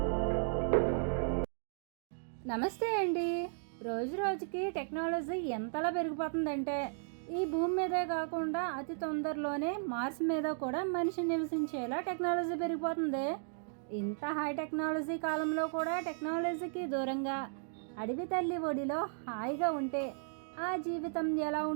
నమస్తే అండి. రోజు రోజుకి టెక్నాలజీ ఎంతలా పెరిగిపోతుందంటే ఈ భూమి మీదే కాకుండా అతి తొందరలోనే మార్స్ మీద కూడా మనిషి నివసించేలా టెక్నాలజీ పెరిగిపోతుంది. ఇంత హై టెక్నాలజీ కాలంలో కూడా టెక్నాలజీకి దూరంగా అడవి తల్లి ఒడిలో హాయిగా ఉంటే ఆ జీవితం ఎలా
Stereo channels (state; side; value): silent; left; digital silence